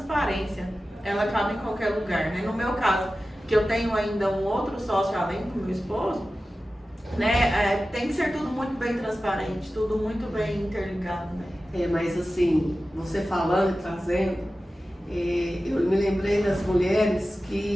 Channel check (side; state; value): both; normal; correlation 0.95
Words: ela cabe em qualquer lugar, né? No meu caso, que eu tenho ainda um outro sócio além do meu esposo, né? Tem que ser tudo muito bem transparente, tudo muito bem interligado, né? Mas assim, você falando e trazendo, eu me lembrei das mulheres